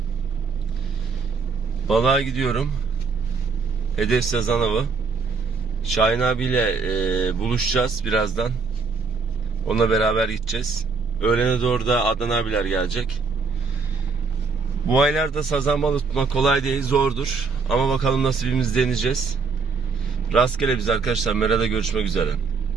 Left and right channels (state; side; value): quieter; left; 4.8 dB